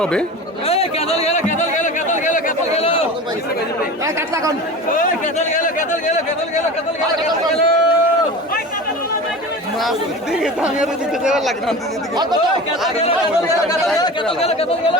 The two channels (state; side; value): normal; both; correlation 0.33